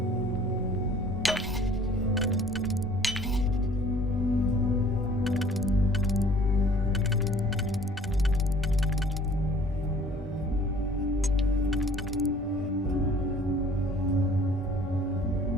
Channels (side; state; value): both; normal; correlation 0.53